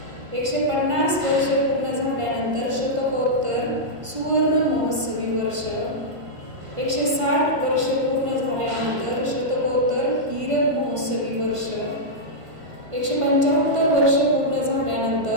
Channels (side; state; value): left; late; 1.5 ms